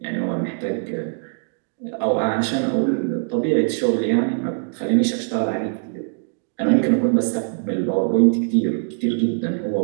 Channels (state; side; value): silent; left; digital silence